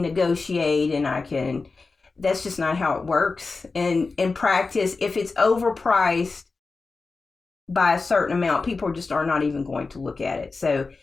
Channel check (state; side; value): quieter; right; 4.1 dB